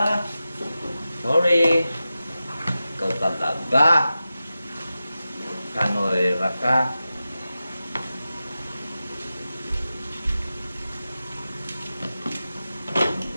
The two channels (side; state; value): both; inverted; correlation -0.93